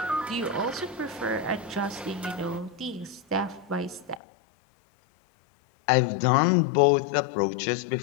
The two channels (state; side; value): drops out; right; at 4.2 s